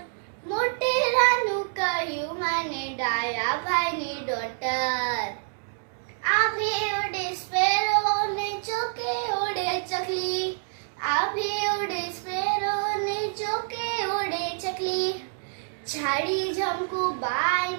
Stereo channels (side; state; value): left; silent; digital silence